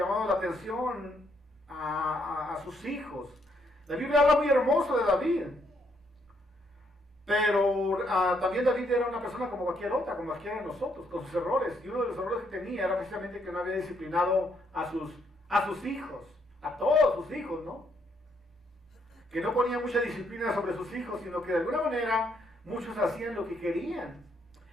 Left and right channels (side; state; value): both; normal; correlation 0.73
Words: la atención a sus hijos. La Biblia habla muy hermoso de David. Pero también David era una persona como cualquier otra, como cualquiera de nosotros, con sus errores. Y uno de los errores que tenía era precisamente que no había disciplinado a sus hijos, a todos sus hijos, ¿no? Que no ponía mucha disciplina sobre sus hijos, sino que de alguna manera muchos hacían lo que querían.